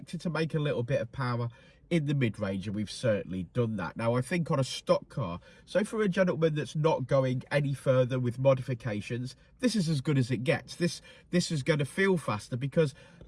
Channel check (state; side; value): identical; both; correlation 1.00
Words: to make a little bit of power in the mid-range, and we've certainly done that. Now, I think on a stock car, so for a gentleman that's not going any further with modifications, this is as good as it gets. This is going to feel faster because,